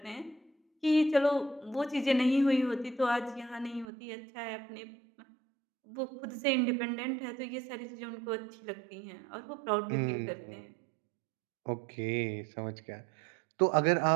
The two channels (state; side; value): drops out; left; at 3.9 s